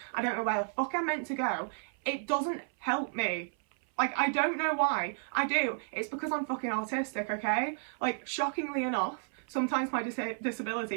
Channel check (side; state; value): left; silent; 56 dB below the other